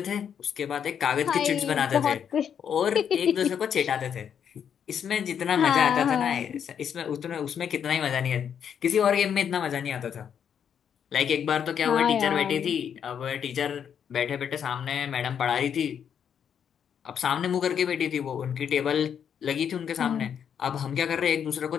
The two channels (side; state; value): right; quieter; 8.2 dB